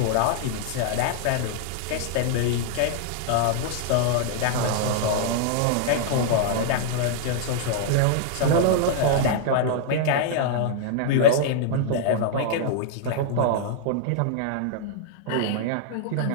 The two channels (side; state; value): both; different; correlation -0.01